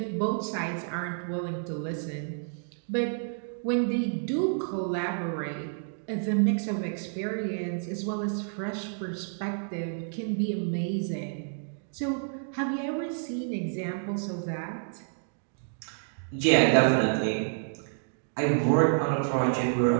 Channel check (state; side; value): silent; left; digital silence